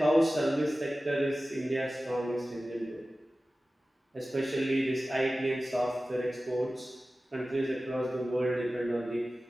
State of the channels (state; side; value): normal; both; correlation 0.96